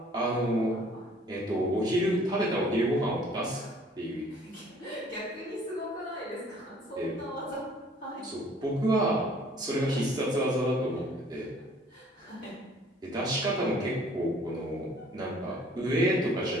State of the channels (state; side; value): normal; both; correlation 0.56